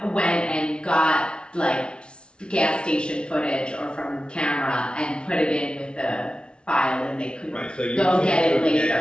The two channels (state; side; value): late; right; 0.056 ms